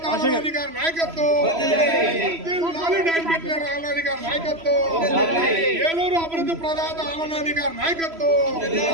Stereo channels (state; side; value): late; left; 3.0 ms